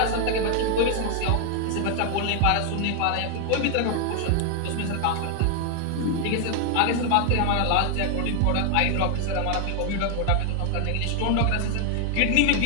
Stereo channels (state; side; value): different; both; correlation 0.00